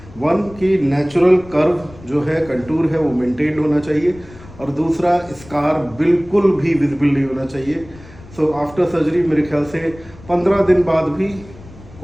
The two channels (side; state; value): left; noise; rumble, 20 dB below the sound